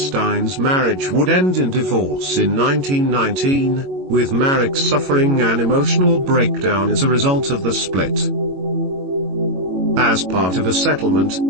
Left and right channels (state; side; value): late; left; 22 ms